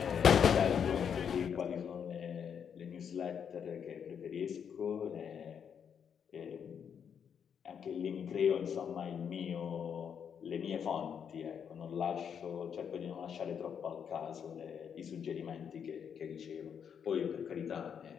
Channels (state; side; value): quieter; right; 7.6 dB